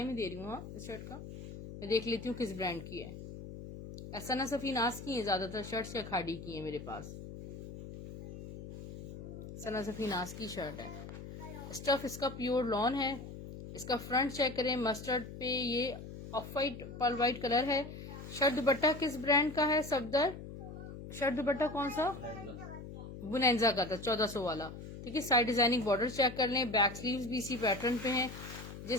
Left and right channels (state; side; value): noise; left; hum, 11 dB below the sound